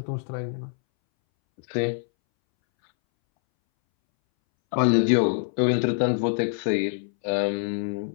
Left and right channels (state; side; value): silent; right; 62 dB below the other